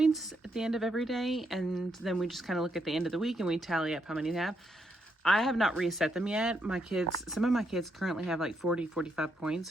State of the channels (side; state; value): both; normal; correlation 0.78